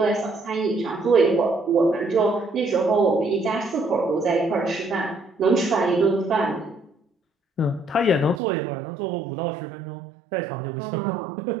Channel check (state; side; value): drops out; left; at 8.4 s